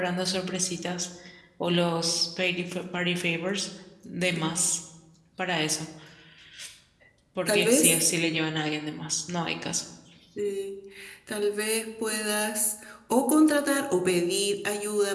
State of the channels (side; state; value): both; identical; correlation 1.00